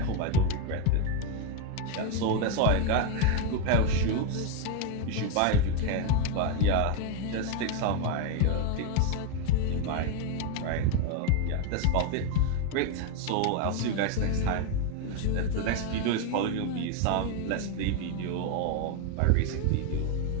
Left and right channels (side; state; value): both; different; correlation 0.01